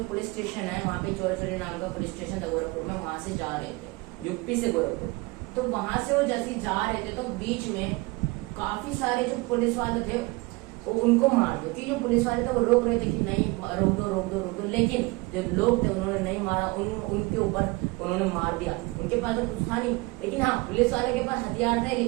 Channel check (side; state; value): left; quieter; 24.2 dB